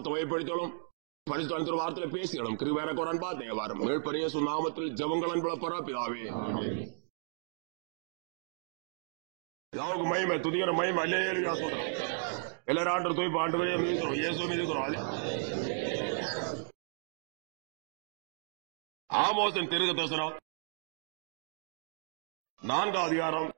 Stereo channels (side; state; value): left; silent; digital silence